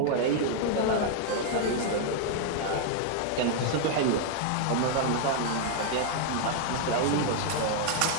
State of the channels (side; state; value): both; different; correlation 0.00